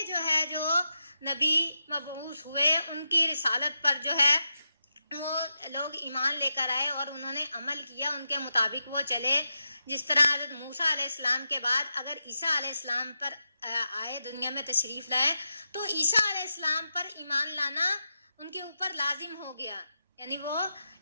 جو ہے جو نبی مبعوث ہوئے ان کی رسالت پر جو ہے وہ لوگ ایمان لے کر آئے اور انہوں نے عمل کیا، ان کے مطابق وہ چلے۔ جس طرح حضرت موسیٰ علیہ السلام کے بعد اگر عیسیٰ علیہ السلام پر آئے، دنیا میں تشریف لائے، تو عیسیٰ علیہ السلام پر ایمان لانا ان کے اوپر لازم ہو گیا، یعنی وہ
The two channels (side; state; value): both; inverted; correlation -0.87